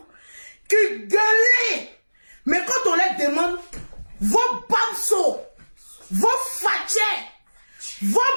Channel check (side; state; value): both; inverted; correlation -1.00